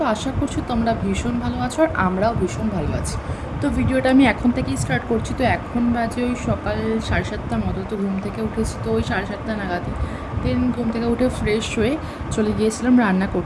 আশা করছি তোমরা ভীষণ ভালো আছো আর আমরাও ভীষণ ভালো আছি। তো ভিডিওটা আমি এখন থেকেই স্টার্ট করছি। তো এখন বাজে ওই সকাল 7:30 মতো। তো ঘুম থেকে উঠেছি তো ওই 7:30 নাগাদই। দেন ঘুম থেকে উঠে ফ্রেশ হয়ে চলে গিয়েছিলাম রান্না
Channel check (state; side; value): identical; both; correlation 1.00